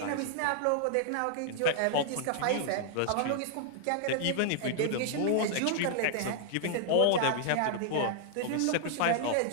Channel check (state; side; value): different; both; correlation -0.01